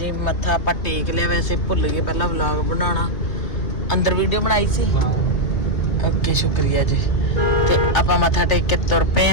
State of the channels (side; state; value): right; late; 3.3 ms